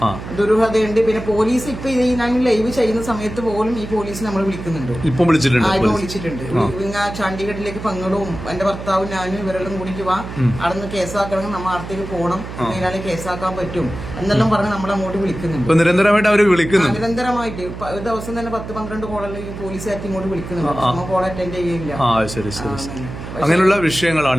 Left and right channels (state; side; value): noise; right; hum, 10 dB below the sound